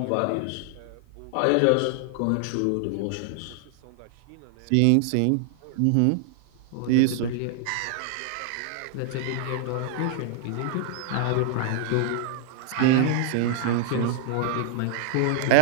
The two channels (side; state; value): both; different; correlation 0.00